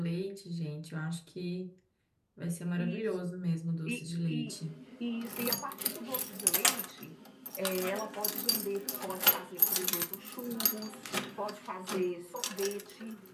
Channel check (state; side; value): identical; both; correlation 1.00